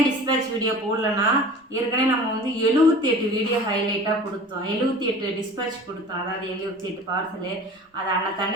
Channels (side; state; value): both; normal; correlation 0.40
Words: டிஸ்பேச் வீடியோ போடலன்னா, ஏற்கனவே நம்ம வந்து 78 வீடியோ ஹைலைட்டாக கொடுத்தோம். 78 டிஸ்பேச் கொடுத்தோம். அதாவது 78 பார்சலு. அதை